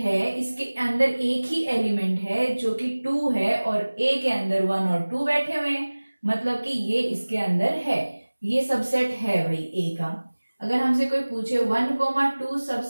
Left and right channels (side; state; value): both; inverted; correlation -1.00